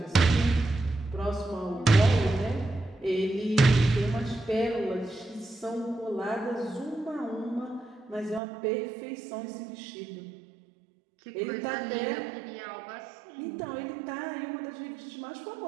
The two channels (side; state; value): left; drops out; at 8.4 s